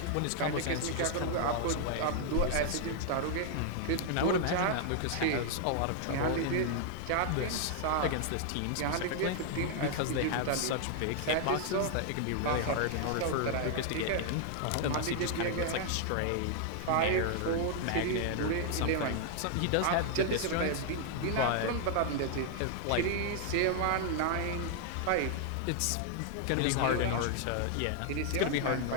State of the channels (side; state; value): both; different; correlation 0.00